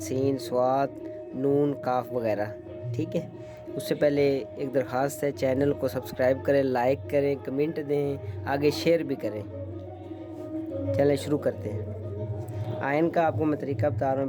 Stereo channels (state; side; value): identical; both; correlation 1.00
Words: स्वाद, नून, काफ वगैरह। ठीक है, उससे पहले एक दरख्वास्त है, चैनल को सब्सक्राइब करें, लाइक करें, कमेंट दें, आगे शेयर भी करें। चलें शुरू करते हैं। आयन का आपको मैं तरीका बता रहा